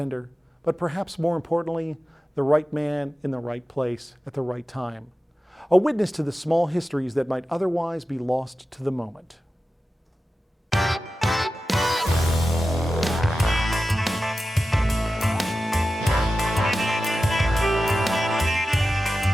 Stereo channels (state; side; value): normal; both; correlation 0.94